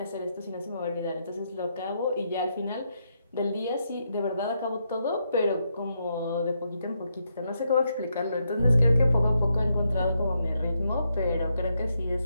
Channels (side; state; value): both; inverted; correlation -0.80